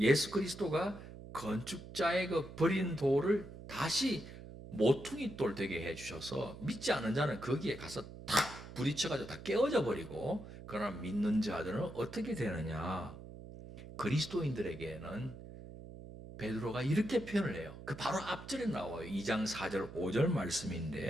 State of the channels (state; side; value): noise; right; hum, 14 dB below the sound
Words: 그리스도가 건축자의 그 버린 돌을 다시 모퉁이 돌 되게 해주셔서 믿지 않은 자는 거기에 가서 탁 부딪혀가지고 다 깨어져 버리고, 그러나 믿는 자들은 어떻게 되느냐? 그리스도인들에게는 베드로가 이렇게 표현을 해요. 그 바로 앞절에 나와요. 2장 4절 5절